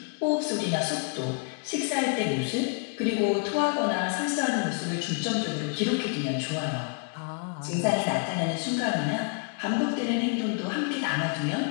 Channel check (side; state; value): right; quieter; 38.3 dB